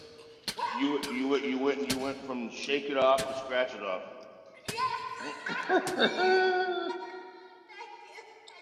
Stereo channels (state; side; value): identical; both; correlation 1.00